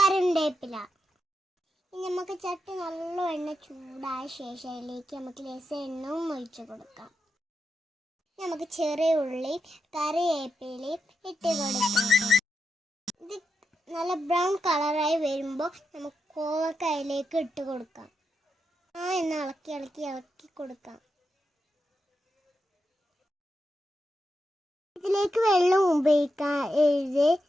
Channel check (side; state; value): both; normal; correlation 0.86